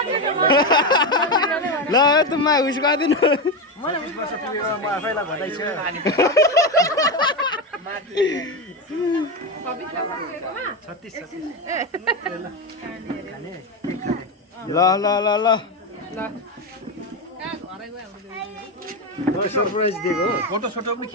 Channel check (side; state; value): both; normal; correlation 0.13